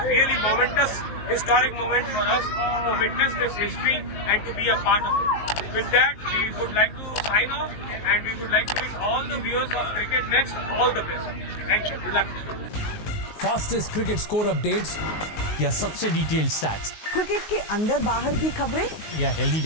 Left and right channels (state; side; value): late; right; 19 ms